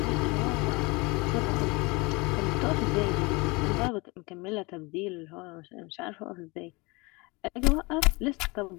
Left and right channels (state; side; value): quieter; right; 25.9 dB